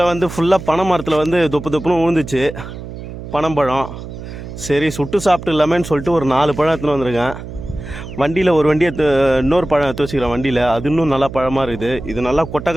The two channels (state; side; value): noise; right; hum, 11 dB below the sound